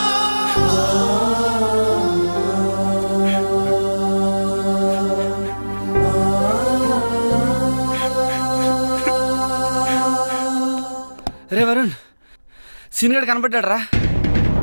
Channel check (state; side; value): inverted; both; correlation -1.00